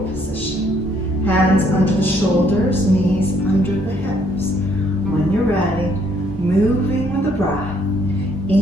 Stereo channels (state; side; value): normal; both; correlation 0.68